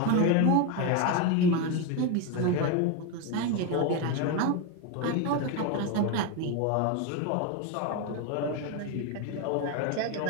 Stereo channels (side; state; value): both; different; correlation 0.03